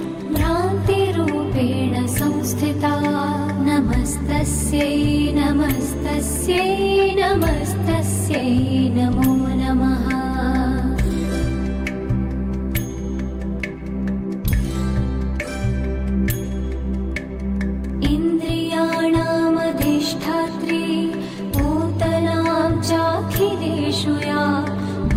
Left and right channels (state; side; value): identical; both; correlation 1.00